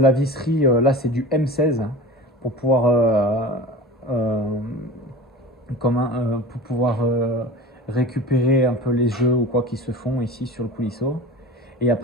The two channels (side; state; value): both; normal; correlation 0.34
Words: visserie, là c'est du M16 pour pouvoir récupérer un peu les jeux ou quoi qui se font ici sur le coulisseau. Et